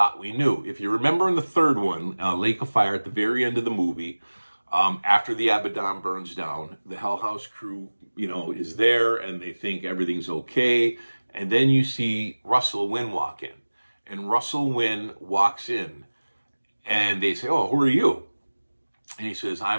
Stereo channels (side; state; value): both; inverted; correlation -1.00